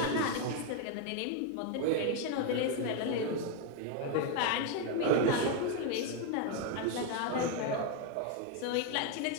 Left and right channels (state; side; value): different; both; correlation 0.01